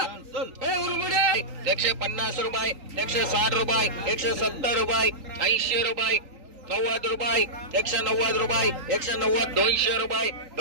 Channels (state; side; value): late; left; 3.9 ms